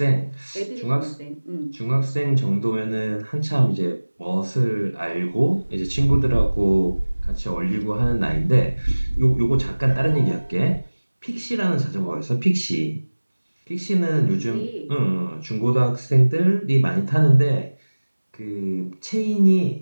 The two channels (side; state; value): both; inverted; correlation -1.00